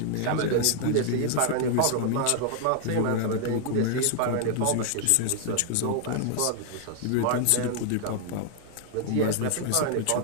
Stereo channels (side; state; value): both; different; correlation 0.00